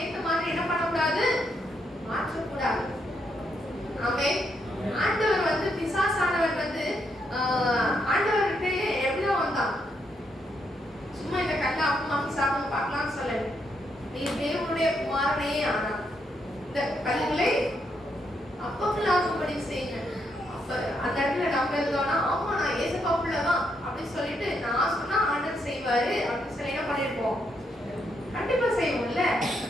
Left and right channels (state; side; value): normal; both; correlation 0.78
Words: ஏற்ற மாதிரி என்ன பண்ணக்கூடாது? மாற்றக்கூடாது. ஆமென். ஆண்டவர் வந்து பிசாசானவர் வந்து ஆண்டவர்கிட்ட எப்படிதான் வந்தான்? சும்மா இந்த கல்ல அப்பமாக்கி சாப்பிட பார்க்கலாம்னு சொல்லல. நீ தேவனுடைய குமாரனே ஆனா இந்த கல்லுகளை அப்பங்களாகும்படி செய்யுங்க. அப்ப அந்த இடத்துல நம்ம இருந்தோம்னா ஆமா நான் ஏசப்பா பிள்ளைதான் அப்படின்னு சொல்லிட்டு நான் சொன்னா ஆண்டவர் செய்வாரு அப்படின்னு சொல்லி என்ன பண்ணிருப்போம்? கண்டிப்பா செய்வோம்ல.